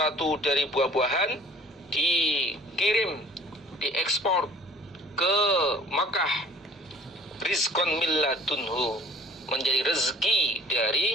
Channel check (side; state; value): both; normal; correlation 0.51